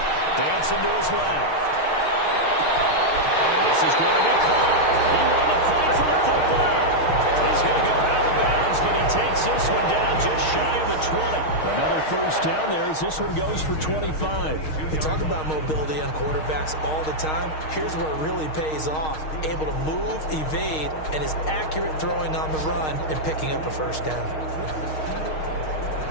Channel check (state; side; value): late; right; 6.4 ms